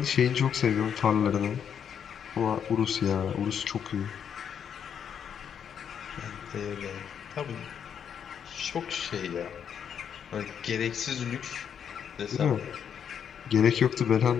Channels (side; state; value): right; quieter; 8.1 dB